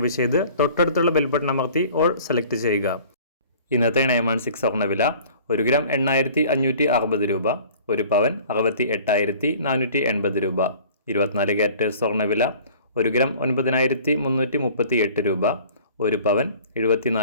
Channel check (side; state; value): both; inverted; correlation -0.48